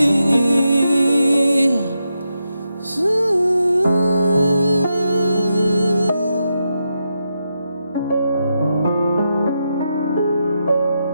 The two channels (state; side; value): inverted; both; correlation -0.85